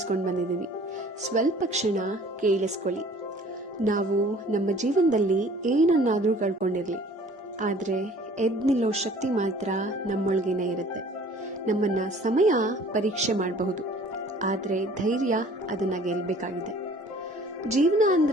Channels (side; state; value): both; normal; correlation 0.51